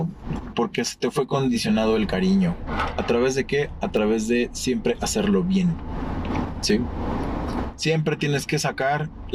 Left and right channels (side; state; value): both; identical; correlation 1.00